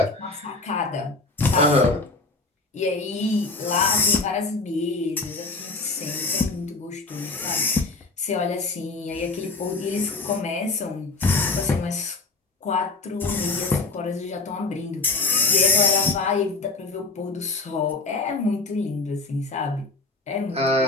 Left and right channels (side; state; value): right; quieter; 3.5 dB